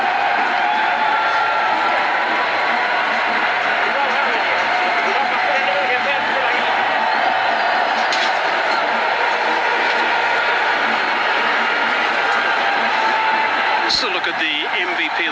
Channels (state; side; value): identical; both; correlation 1.00